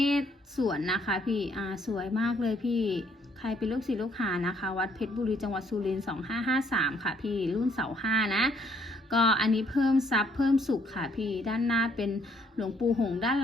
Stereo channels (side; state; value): both; normal; correlation 0.67